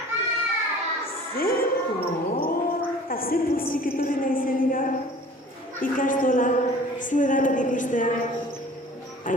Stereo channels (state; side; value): normal; both; correlation 0.47